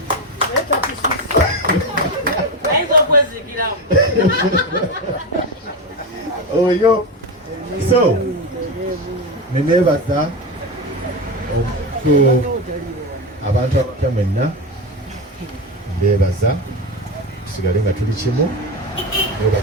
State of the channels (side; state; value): both; normal; correlation 0.17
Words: oyo so neneebaza abantu abapya mwenna mbeebaza tusigale nga tuli kimu